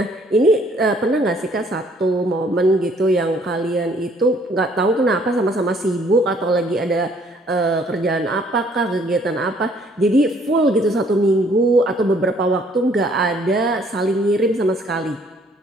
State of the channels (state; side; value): normal; both; correlation 0.62